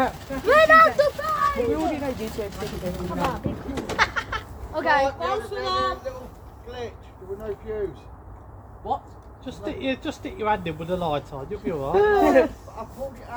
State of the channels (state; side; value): identical; both; correlation 1.00